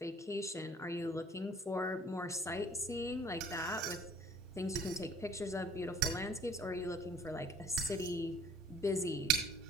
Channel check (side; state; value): both; normal; correlation 0.53